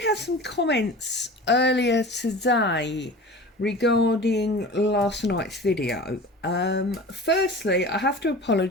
have some comments earlier today regarding last night's video. Firstly, I have to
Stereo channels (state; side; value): normal; both; correlation 0.37